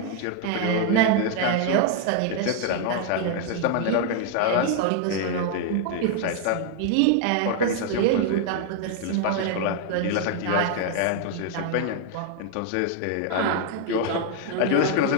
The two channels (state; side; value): different; both; correlation 0.00